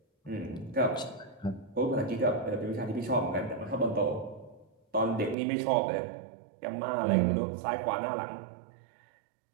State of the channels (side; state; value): left; drops out; at 5.4 s